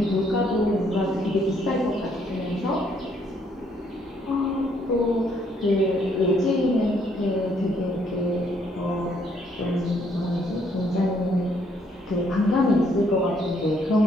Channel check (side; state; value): both; normal; correlation 0.69